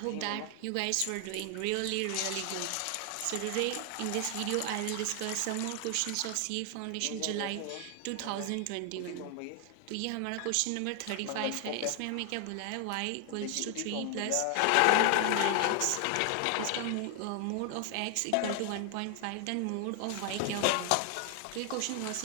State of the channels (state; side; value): different; both; correlation 0.00